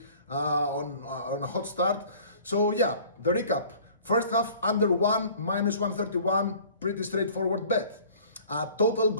on a hot start. So yeah, the recap: first half under 1, -131, pretty straightforward bet. Total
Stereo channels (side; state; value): both; inverted; correlation -0.49